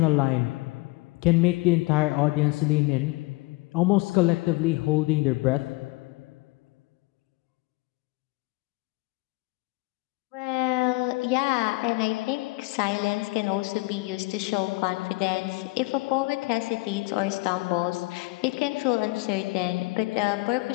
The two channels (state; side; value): quieter; right; 24.0 dB